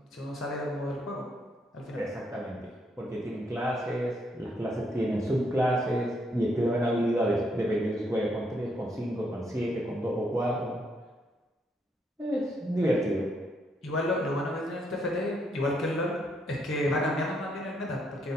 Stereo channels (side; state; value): both; normal; correlation 0.74